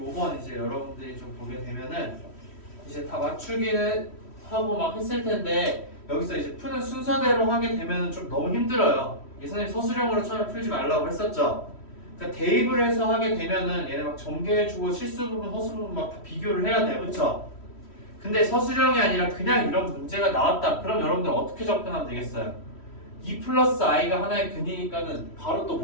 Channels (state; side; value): late; right; 3.1 ms